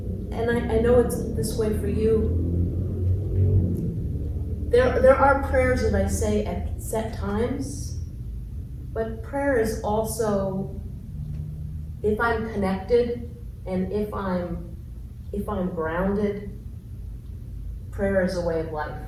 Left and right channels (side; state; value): both; identical; correlation 1.00